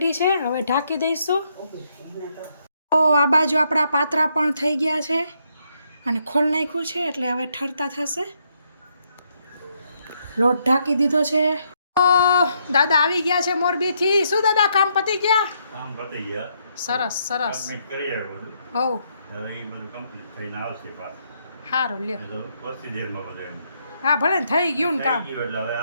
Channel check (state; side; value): inverted; both; correlation -0.75